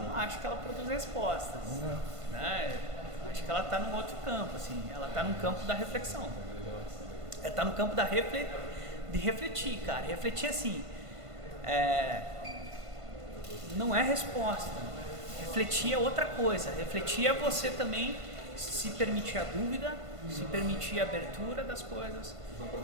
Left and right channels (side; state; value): left; late; 1.5 ms